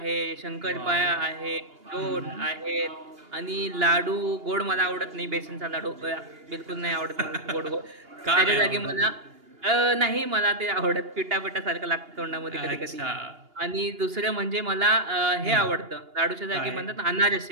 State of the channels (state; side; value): late; left; 2.8 ms